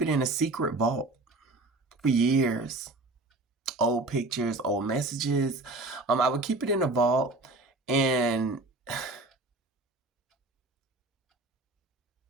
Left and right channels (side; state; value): left; quieter; 3.0 dB